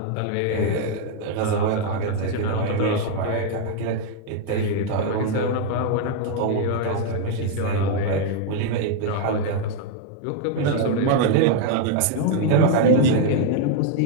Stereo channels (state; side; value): different; both; correlation 0.00